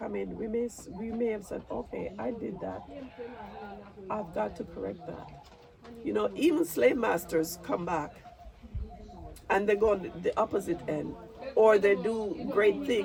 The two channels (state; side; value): identical; both; correlation 1.00